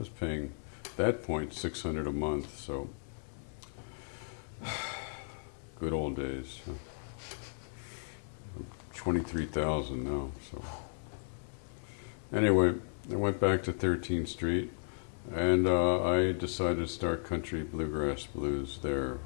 paying, at that point, $600 a month, so good old days. 23,000 now. So anyway, I went back to 13th Street, and I decided to start country bluegrass blues there.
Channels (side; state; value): right; silent; digital silence